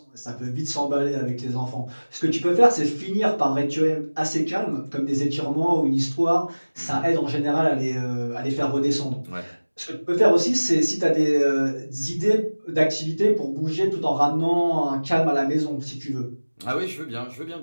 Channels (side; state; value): both; inverted; correlation -1.00